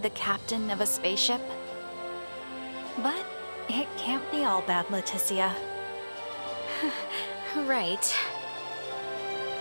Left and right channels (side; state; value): both; inverted; correlation -1.00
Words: the captain of a spaceship. But it can't be all bad, Leticia. Right.